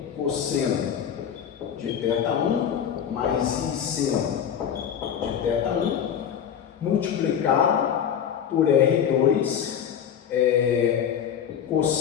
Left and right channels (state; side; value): quieter; right; 8.6 dB